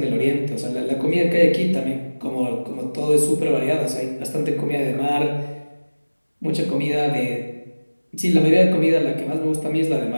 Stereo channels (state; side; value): inverted; both; correlation -1.00